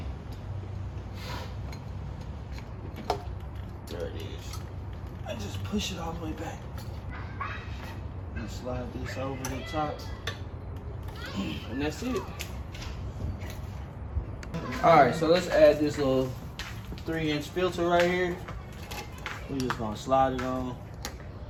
there. There it is. I just push it all the way back and slide this over the top. And that's it. Alright, so let's add this little 3-inch filter right here. We're just gonna slide it on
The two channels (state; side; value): identical; both; correlation 1.00